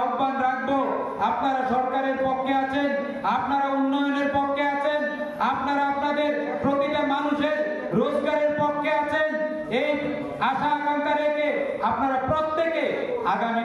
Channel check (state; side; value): identical; both; correlation 1.00